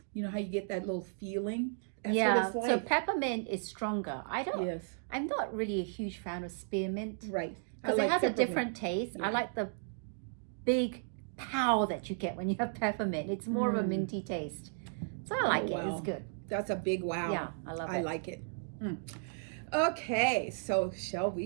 you know how you get that little feeling? That's Yeah, what it's like. so peppermint is stronger. Yes, I'm not really a huge fan of spearmint right. I because like it has a peppermint. different taste. Yeah. I like the big pow that you get when you have peppermint. It's more of a minty taste. So I like it. Wow. It's good. That's a big wow. Yeah, I love it. I like it. Okay, so shall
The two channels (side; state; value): left; silent; digital silence